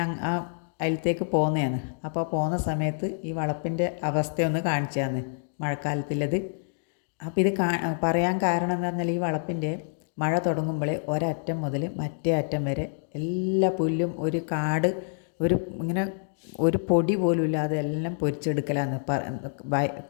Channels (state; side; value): silent; right; digital silence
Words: ആ അതിലത്തേക്ക് പോകുന്നതാണ്. അപ്പോൾ പോകുന്ന സമയത്ത് ഈ വളപ്പിൻ്റെ അവസ്ഥയൊന്ന് കാണിച്ചതാണ്, മഴക്കാലത്തുള്ളത്. അപ്പോൾ ഇത് പറയാൻ കാരണം എന്ന് പറഞ്ഞാൽ ഈ വളപ്പിൻ്റെ മഴ തുടങ്ങുമ്പോൾ ഒരറ്റം മുതൽ മറ്റേ അറ്റം വരെ എല്ലാ പുല്ലും ഒരു കാട്, ഇങ്ങനെ ഒരു പൊടി പോലും ഇല്ലാതെ എല്ലാം പൊരിച്ചെടുക്കലാന്ന്.